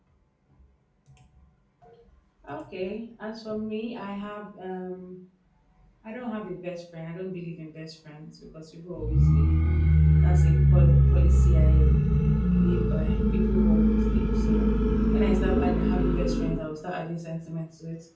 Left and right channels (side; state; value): both; identical; correlation 1.00